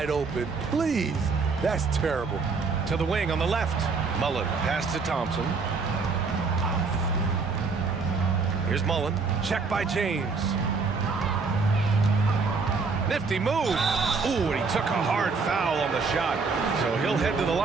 open? Please. That's terrible. To the wing on the left. Mullen pass to Thompson. Here's Mullen. Check by James. Nifty move. Ooh, and he took a hard foul on the shot. So he'll head to the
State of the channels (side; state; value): left; quieter; 4.6 dB